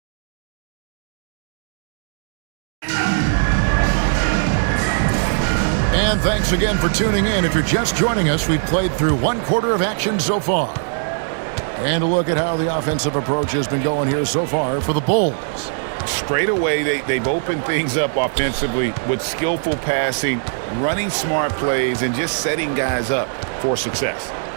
And thanks again for tuning in. If you're just joining us, we've played through one quarter of action so far. And a look at how the offensive approach has been going here so far for the Bulls. Straight away, they've opened things up offensively with skillful passing, running smart plays, and just setting guys up for success.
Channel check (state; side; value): silent; left; digital silence